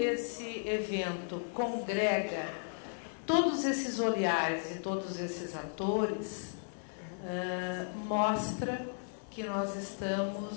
evento congrega todos esses olhares e todos esses atores, mostra que nós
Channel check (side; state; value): right; silent; digital silence